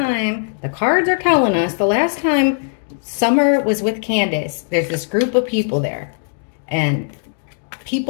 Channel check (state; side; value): silent; right; digital silence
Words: the cards are telling us, the last time Summer was with Candace, there's this group of people there. And